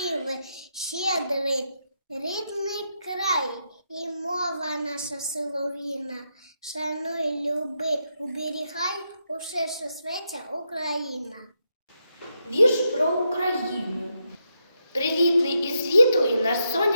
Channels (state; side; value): inverted; both; correlation -0.82